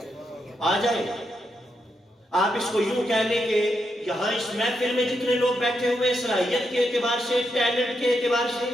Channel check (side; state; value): both; normal; correlation 0.83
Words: آ جائے۔ آپ اس کو یوں کہہ لیں کہ یہاں اس محفل میں جتنے لوگ بیٹھے ہوئے، صلاحیت کے اعتبار سے، ٹیلنٹ کے اعتبار سے،